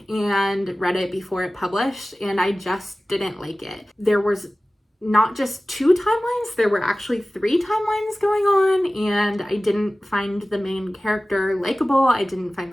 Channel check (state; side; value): normal; both; correlation 0.97